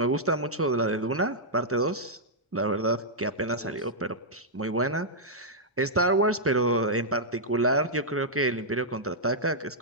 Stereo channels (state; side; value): normal; both; correlation -0.08